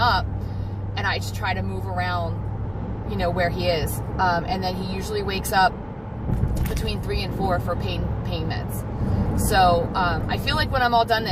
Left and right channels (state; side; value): identical; both; correlation 1.00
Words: and I just try to move around, you know, where he is, and then he usually wakes up between 3 and 4 for pain meds. So I feel like when I'm all done